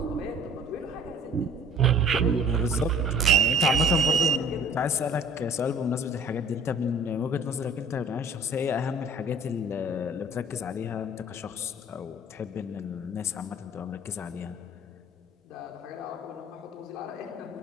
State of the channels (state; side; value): normal; both; correlation 0.50